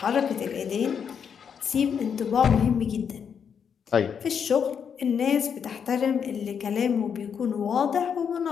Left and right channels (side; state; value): right; quieter; 7.2 dB